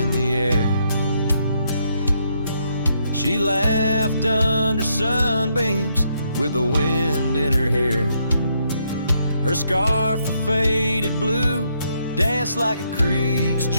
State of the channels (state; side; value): inverted; both; correlation -0.75